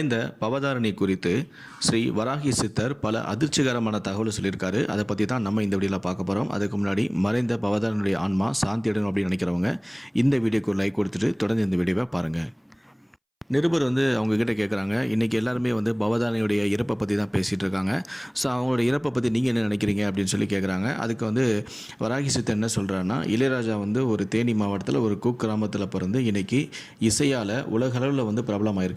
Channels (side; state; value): both; identical; correlation 1.00